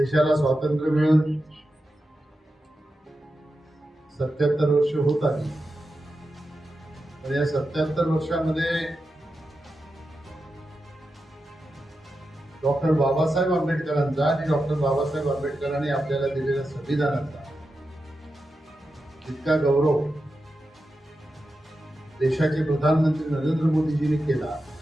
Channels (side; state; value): both; normal; correlation 0.90